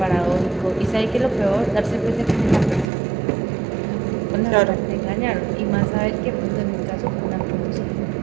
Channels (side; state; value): left; drops out; at 2.9 s